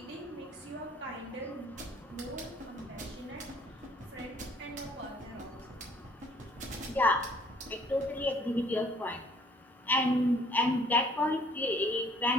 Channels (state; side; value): normal; both; correlation 0.59